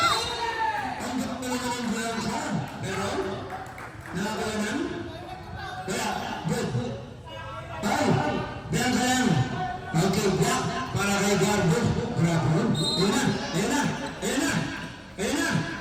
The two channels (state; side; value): identical; both; correlation 1.00